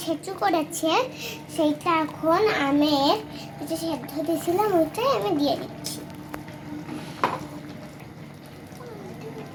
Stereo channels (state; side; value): identical; both; correlation 1.00